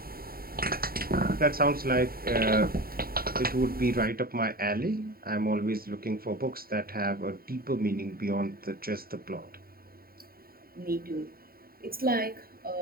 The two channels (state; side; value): late; left; 0.43 ms